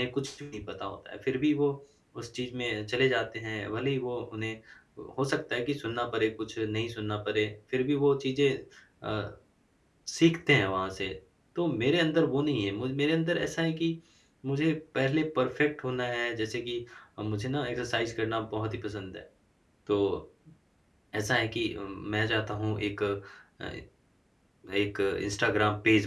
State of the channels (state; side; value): identical; both; correlation 1.00